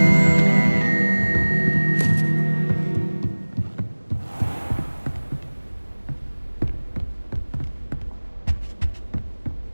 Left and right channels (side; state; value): both; inverted; correlation -1.00